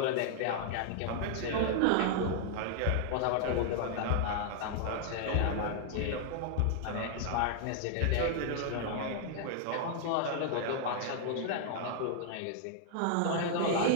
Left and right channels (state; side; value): different; both; correlation -0.01